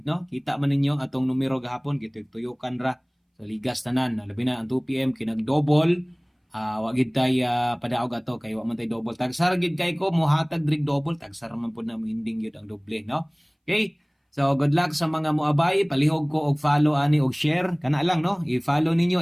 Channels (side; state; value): both; identical; correlation 1.00